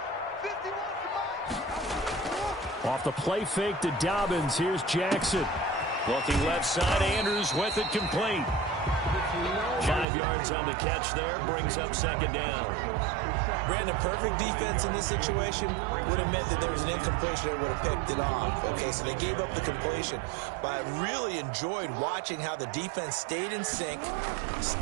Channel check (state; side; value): drops out; left; at 10.1 s